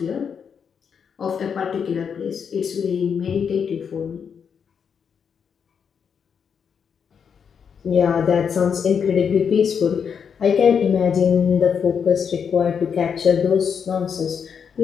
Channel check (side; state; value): right; quieter; 6.9 dB